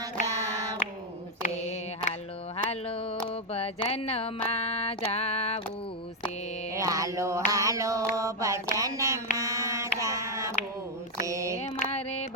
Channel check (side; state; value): both; normal; correlation 0.02